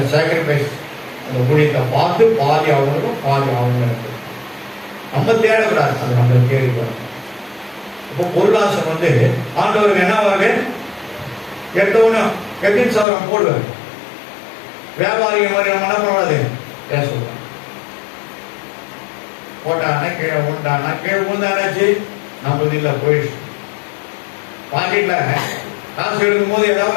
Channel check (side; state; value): right; drops out; at 13.1 s